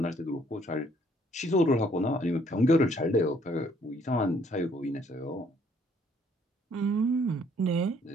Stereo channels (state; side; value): normal; both; correlation 0.64